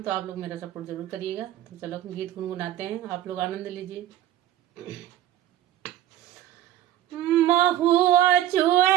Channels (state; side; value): quieter; left; 12.7 dB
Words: तो आप लोग मेरा सपोर्ट जरूर करिएगा। तो चलो गीत गुनगुनाते हैं, आप लोग आनंद लीजिए। महुआ